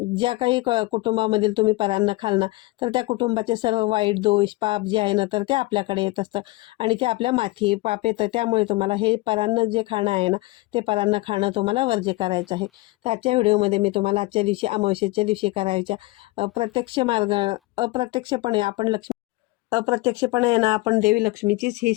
ज्या काही कुटुंबामधील तुम्ही परान्न खाल ना तर त्या कुटुंबाचे सर्व वाईट दोष पाप पाप जे आहे ना तर ते आपल्याकडे येत असतं आणि ते आपल्या माथी पाप येतं. त्यामुळे तुम्हाला हे परान्न जे खाणं आहे ना ते परान्न खाणं तुम्हाला वर्ज्य करायचं आहे. तर आजच्या व्हिडिओमध्ये मी तुम्हाला आजच्या दिवशी अमावस्येच्या दिवशी करायच्या प्रत्यक्ष मार्ग अप्रत्यक्षपणे अप्रत्यक्षपणे आहे ना आपण देवी लक्ष्मीचीच ही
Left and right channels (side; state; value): right; quieter; 21.2 dB